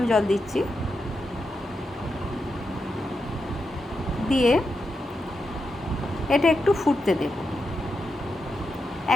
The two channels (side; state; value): both; normal; correlation 0.86